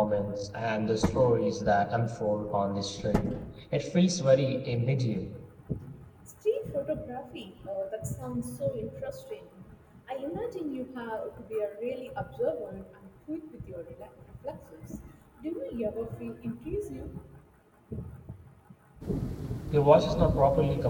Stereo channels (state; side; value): identical; both; correlation 1.00